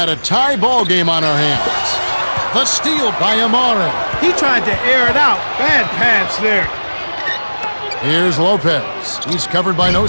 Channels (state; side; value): inverted; both; correlation -1.00